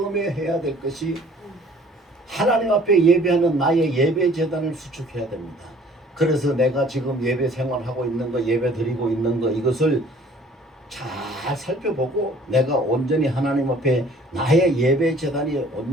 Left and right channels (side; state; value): both; normal; correlation 0.54